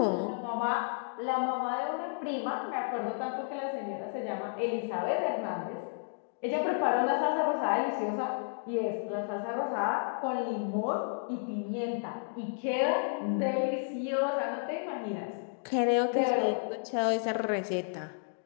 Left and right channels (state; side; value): silent; right; digital silence